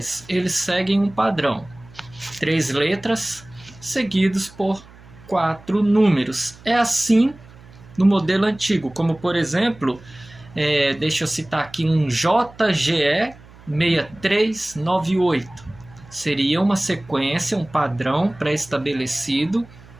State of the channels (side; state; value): right; noise; hum, 22 dB below the sound